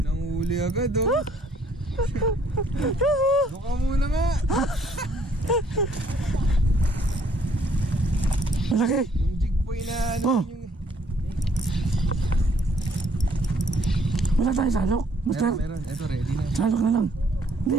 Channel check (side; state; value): both; normal; correlation 0.64